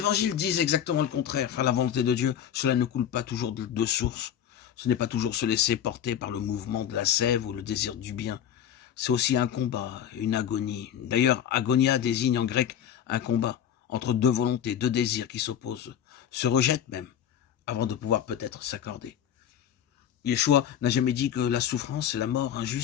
disent exactement le contraire. Faire la volonté de Dieu, cela ne coule pas toujours de source. Ce n'est pas toujours se laisser porter par le mouvement de la sève ou le désir du bien. C'est aussi un combat, une agonie. D'ailleurs, agonia désigne en grec un combat entre deux volontés, deux désirs qui s'opposent, se rejettent même, avant de pouvoir peut-être s'accorder. Yeshua n'a jamais dit que la souffrance et la mort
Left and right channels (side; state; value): right; quieter; 9.6 dB